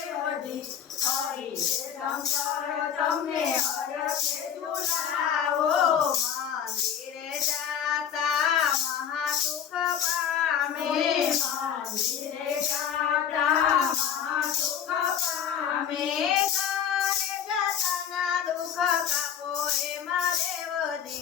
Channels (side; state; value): right; quieter; 8.4 dB